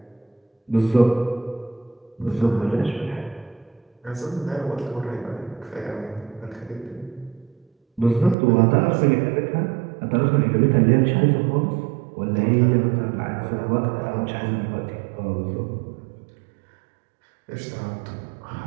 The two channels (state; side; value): drops out; left; at 8.3 s